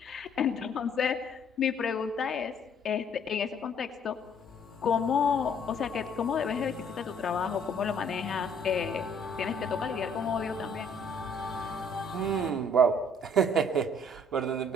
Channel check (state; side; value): normal; both; correlation 0.61